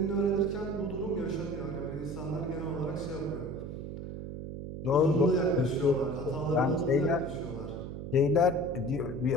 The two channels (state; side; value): noise; right; hum, 8 dB below the sound